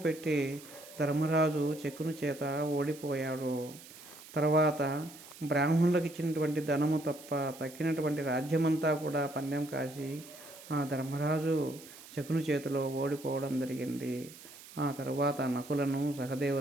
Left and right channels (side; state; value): right; noise; hiss, 18 dB below the sound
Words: పెట్టి ధర్మరాజు శకుని చేత ఓడిపోయాడు. తర్వాత బ్రాహ్మణులకు ఇచ్చినటువంటి ధనము తప్ప తక్కినటువంటి రాజ్యమంతా కూడా పందెం కాసి ఆ ధర్మరాజు శకుని చేతిలో ఓడిపోవడం జరిగింది. ఆ తర్వాత నకులను,